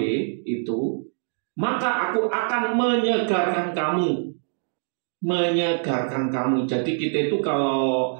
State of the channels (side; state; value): left; silent; digital silence